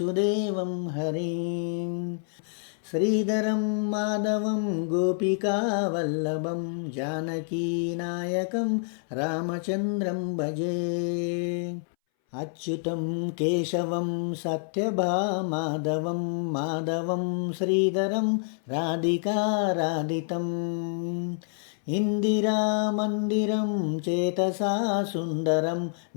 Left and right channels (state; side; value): silent; right; 60 dB below the other